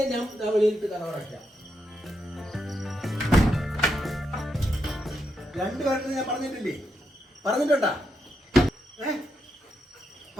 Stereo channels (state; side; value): normal; both; correlation 0.82